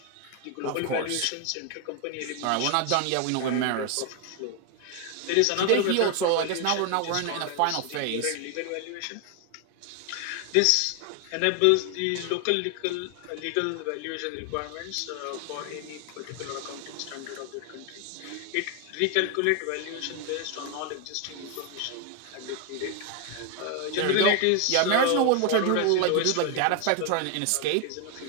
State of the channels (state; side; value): different; both; correlation 0.00